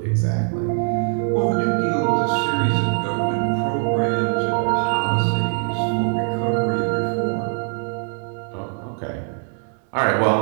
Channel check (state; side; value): silent; left; 60 dB below the other